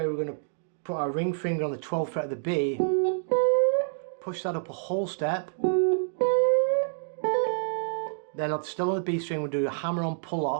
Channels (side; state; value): left; silent; digital silence